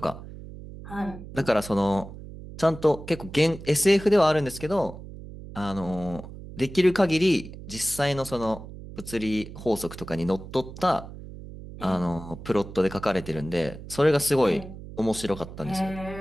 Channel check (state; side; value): noise; right; hum, 13 dB below the sound